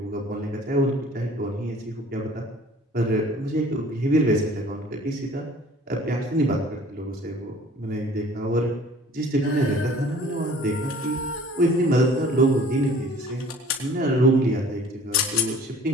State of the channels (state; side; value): normal; both; correlation 0.50